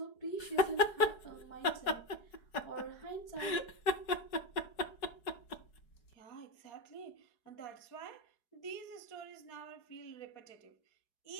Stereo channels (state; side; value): late; right; 4.7 ms